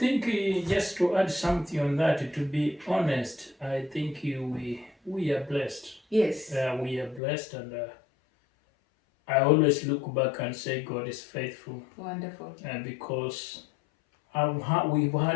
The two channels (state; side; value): drops out; right; at 7.2 s